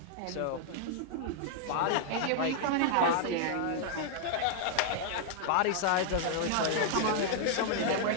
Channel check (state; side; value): different; both; correlation -0.01